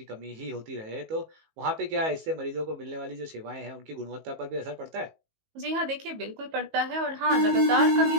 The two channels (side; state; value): left; late; 19 ms